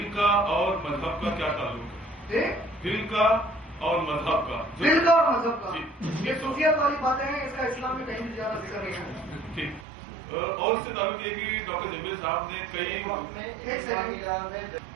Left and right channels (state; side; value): drops out; left; at 9.9 s